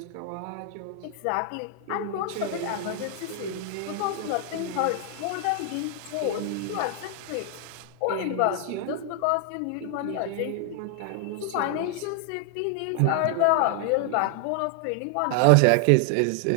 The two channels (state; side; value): different; both; correlation 0.00